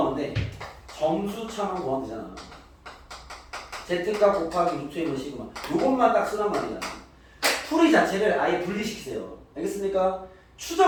돼? 점수차만 구하면 되잖아. Z값 곱하기 루트 1은 시그마. 요것만 딱 쓰란 말이야. 풀이 자체를 아예 분리시키세요. 알겠습니까?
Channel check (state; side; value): identical; both; correlation 1.00